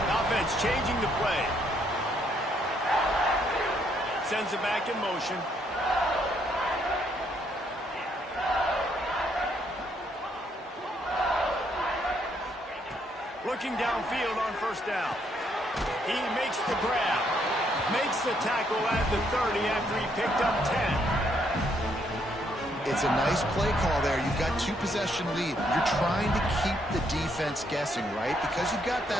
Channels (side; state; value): both; normal; correlation 0.72